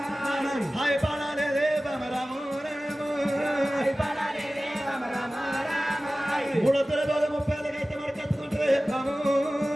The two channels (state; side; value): normal; both; correlation 0.97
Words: హాయ్ పడాలే బామ రాము రాము మూడొత్తుల రోజు 30 అయితే మరి కత్తుకుంటే బాము